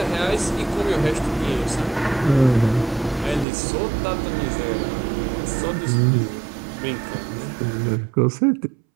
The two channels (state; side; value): drops out; left; at 3.5 s